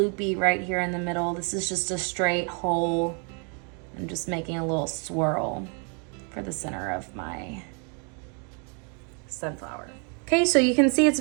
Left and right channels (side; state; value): left; quieter; 37.8 dB